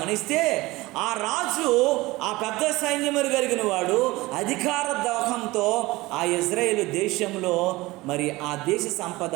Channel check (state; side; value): quieter; left; 20.5 dB